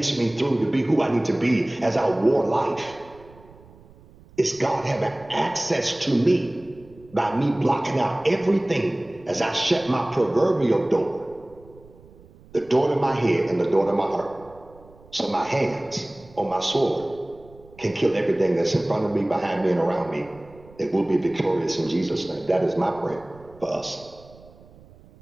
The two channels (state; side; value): noise; right; rumble, 24 dB below the sound